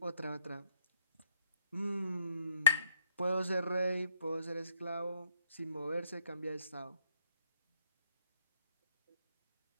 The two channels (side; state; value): both; inverted; correlation -0.65